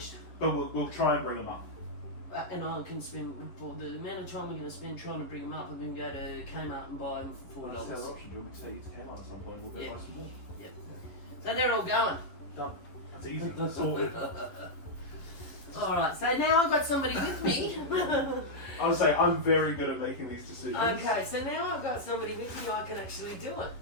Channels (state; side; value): late; right; 11 ms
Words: But we'll try and bring them up. And I can spend, for the amount of time we're going to spend trying to bring them up, I'm going to go to Kmart and buy them for $4. That's the other option. Do you want me to take you to Kmart at some point? We'll go buy some more. Yep. So they're all going. Done. That's easy. That's sorted. Alright, so now I've got somebody with me. I would say I'm very good at making these decisions. Okay, so now I've got somebody with me, I can actually do it.